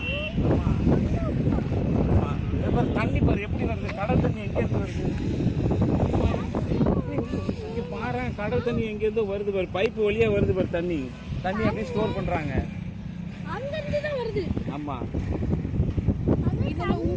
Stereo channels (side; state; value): both; identical; correlation 1.00